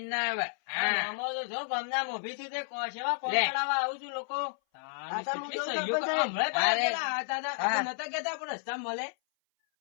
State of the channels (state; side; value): silent; right; 57 dB below the other